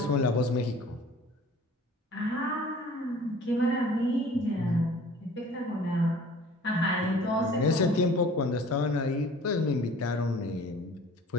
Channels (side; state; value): both; normal; correlation 0.48